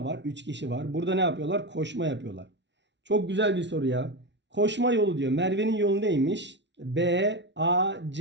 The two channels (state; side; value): late; left; 0.51 ms